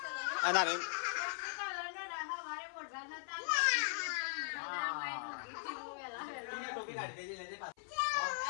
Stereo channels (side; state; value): right; silent; 51 dB below the other